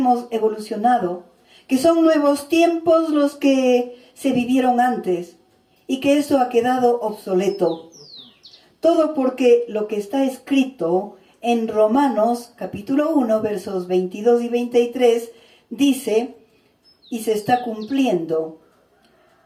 evolucionado, que son nuevos tiempos los que se vivieron antes y que eso ha quedado obsoleto. Todo porque lo que está escrito en Romanos capítulo 1, versos 22 y 23, dice, y se está cumpliendo:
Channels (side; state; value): both; identical; correlation 1.00